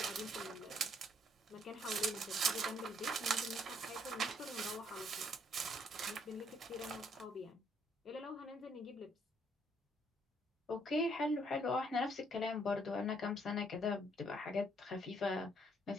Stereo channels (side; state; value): both; normal; correlation 0.67